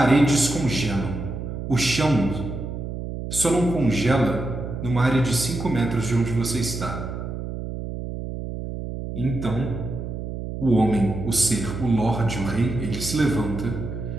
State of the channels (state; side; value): noise; right; hum, 6 dB below the sound